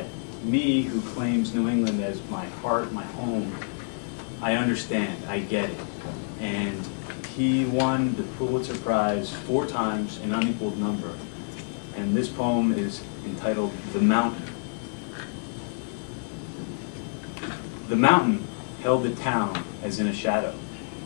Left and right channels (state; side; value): silent; right; digital silence